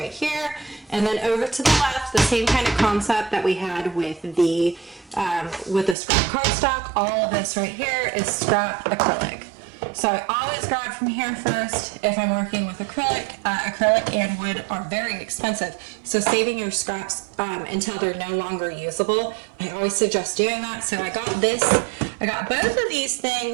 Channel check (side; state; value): left; drops out; at 6.0 s